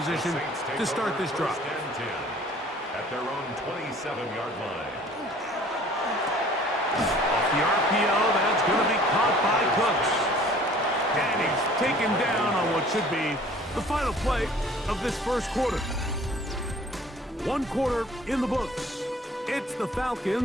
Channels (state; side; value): normal; both; correlation 0.51